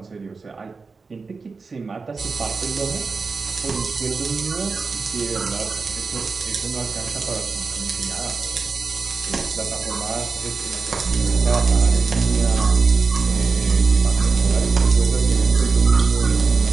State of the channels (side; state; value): left; quieter; 4.4 dB